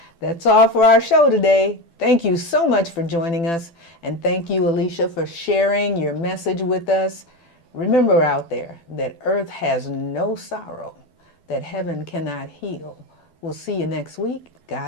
That's all for our show today. Thank you so much for joining us. And thank you, Alyshia, for sharing your message with us. Remember out there that earth has no sorrow, that heaven cannot heal. We'll see you next week.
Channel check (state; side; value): late; right; 12 ms